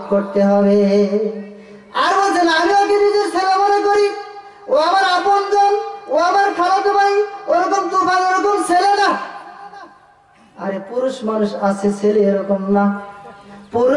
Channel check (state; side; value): identical; both; correlation 1.00